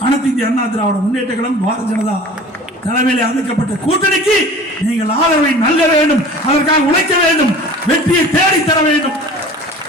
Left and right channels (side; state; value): both; normal; correlation 0.42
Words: அனைத்து இந்திய அண்ணா திராவிட முன்னேற்ற கழகம் பாரதிய ஜனதா தலைமையில் அமைக்கப்பட்ட கூட்டணிக்கு நீங்கள் ஆதரவை நல்க வேண்டும், அதற்காக உழைக்க வேண்டும், வெற்றியை தேடி தர வேண்டும்.